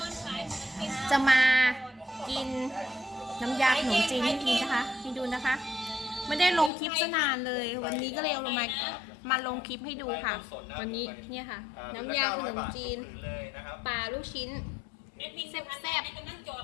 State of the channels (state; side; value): drops out; right; at 6.7 s